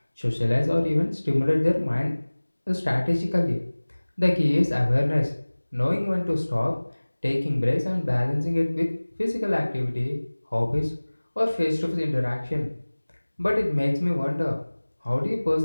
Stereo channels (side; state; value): both; inverted; correlation -1.00